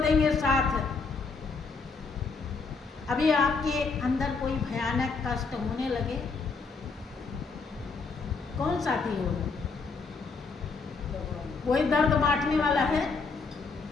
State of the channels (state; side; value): quieter; right; 4.5 dB